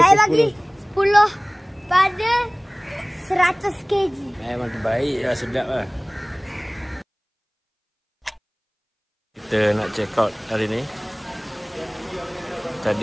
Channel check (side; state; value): both; identical; correlation 1.00